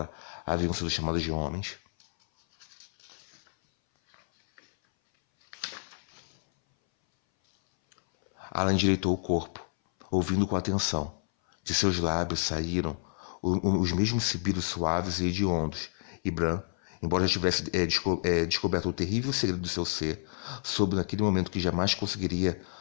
haviam sido chamadas de homens. Alan endireitou o corpo, ouvindo com atenção. De seus lábios saíram os mesmos sibilos suaves e hediondos, e Bran, embora já tivesse descoberto o terrível segredo do seu ser, soube naquele momento que jamais conseguiria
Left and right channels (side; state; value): right; silent; 58 dB below the other